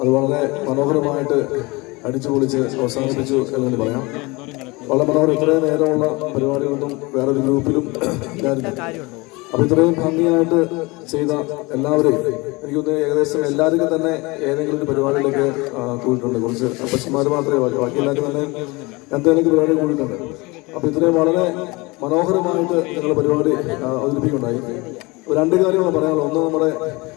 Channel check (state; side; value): quieter; right; 24.5 dB